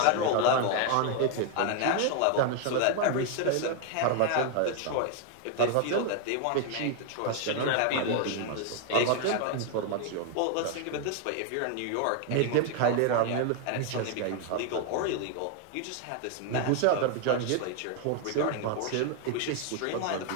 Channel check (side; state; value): both; different; correlation 0.00